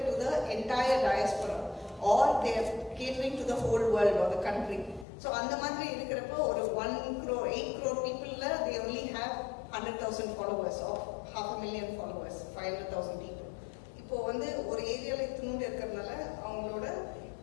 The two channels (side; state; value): right; drops out; at 5.1 s